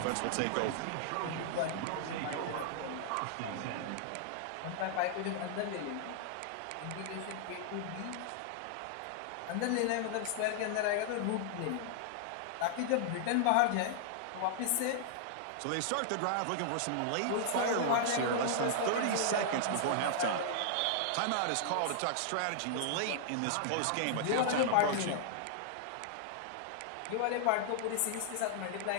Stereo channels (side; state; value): both; different; correlation -0.01